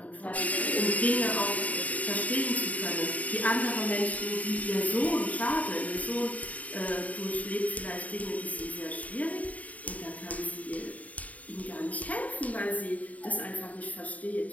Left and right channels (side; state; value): right; late; 0.071 ms